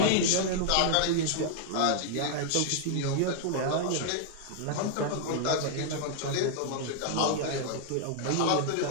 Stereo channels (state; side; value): different; both; correlation -0.01